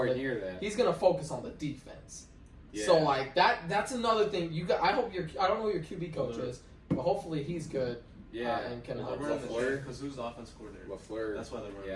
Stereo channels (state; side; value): identical; both; correlation 1.00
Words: near that. He's going to focus on the defense. Yeah. So like that's another thing. I hope I don't know who your QB coach is, but hopefully he's good. Yeah, and can Well, help. they're running the LaFleur. because who's the offense coordinator? LaFleur. That's why they're running.